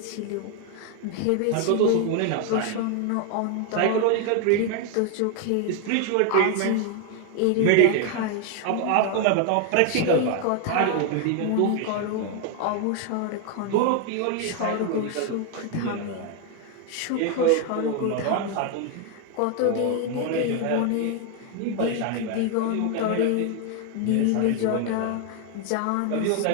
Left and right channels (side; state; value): both; different; correlation 0.01